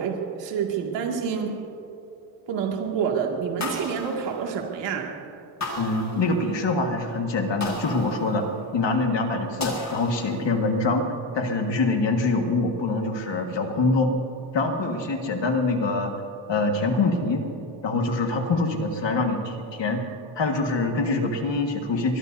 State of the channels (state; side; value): normal; both; correlation 0.16